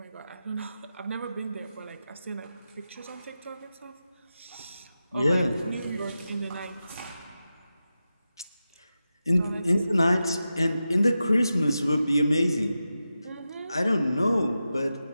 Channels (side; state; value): both; inverted; correlation -0.91